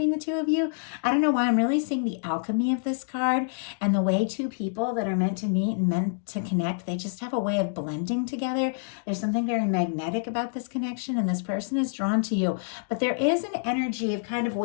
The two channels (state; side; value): silent; right; digital silence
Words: the two of you. I don't know why, I'm really seeing the alchemy of this card, and the way two people that are meant to meet and meant to connect, they just have a way of blending together. There's something very magnetic about this connection, and this person is drawn to you. But there is an energy of kind of